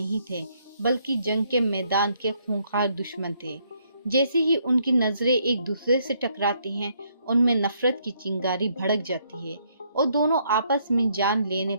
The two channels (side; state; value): both; inverted; correlation -0.71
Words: थे, बल्कि जंग के मैदान के खूंखार दुश्मन थे। जैसे ही उनकी नजरें एक दूसरे से टकराती हैं, उनमें नफरत की चिंगारी भड़क जाती है और दोनों आपस में जान लेने